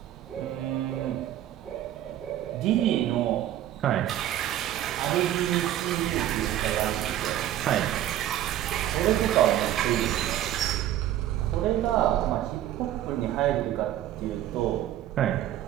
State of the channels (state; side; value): quieter; left; 12.5 dB